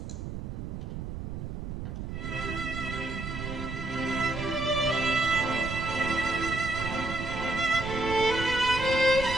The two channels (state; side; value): noise; right; rumble, 6 dB below the sound